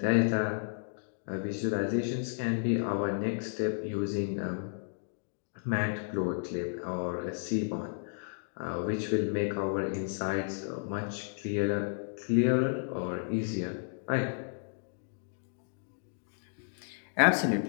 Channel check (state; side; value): silent; right; digital silence